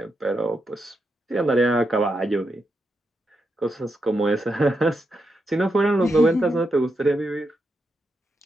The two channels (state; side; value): normal; both; correlation 0.84